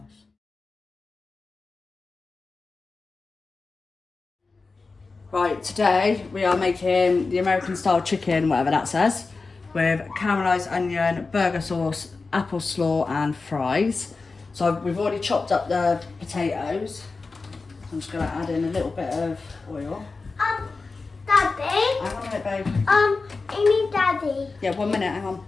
Right, today we are making the American style chicken, whatever that says, with caramelised onion, burger sauce, apple slaw and fries. So we've already chopped up the potatoes. I'm just going to add in a little bit of oil. Daddy? Hang on a minute, babe. I need Daddy. Yeah, 1 minute, hang on.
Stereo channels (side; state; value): right; quieter; 4.0 dB